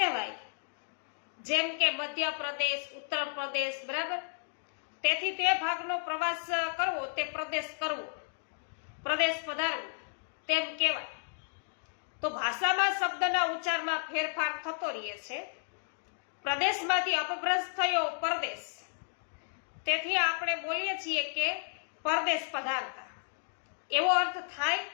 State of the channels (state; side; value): silent; right; digital silence